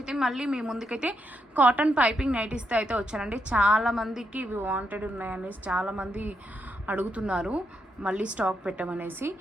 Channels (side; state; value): both; normal; correlation 0.80